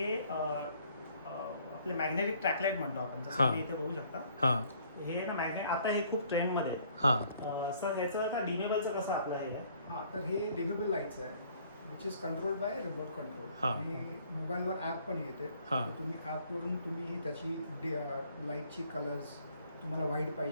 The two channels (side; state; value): both; inverted; correlation -0.60